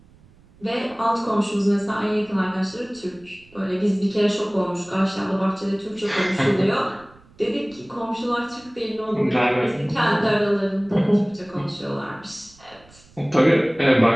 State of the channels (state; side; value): noise; right; rumble, 27 dB below the sound